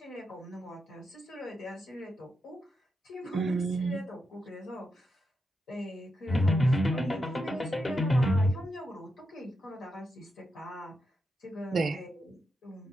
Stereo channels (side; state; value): both; normal; correlation 0.85